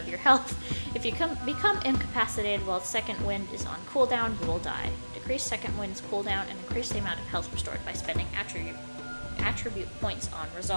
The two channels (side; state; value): both; inverted; correlation -1.00